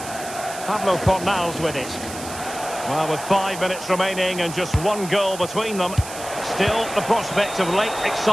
Pablo Fornals with it. Well, with 5 minutes remaining and just one goal between them, still the prospect of late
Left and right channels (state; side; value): noise; right; hiss, 12 dB below the sound